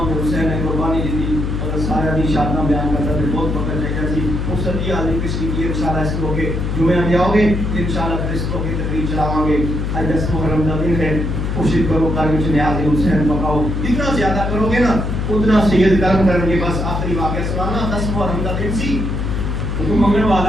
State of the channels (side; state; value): left; noise; hum, 1 dB below the sound